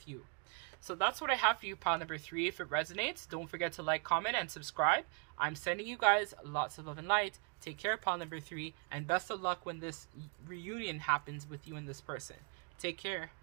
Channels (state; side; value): quieter; left; 37.6 dB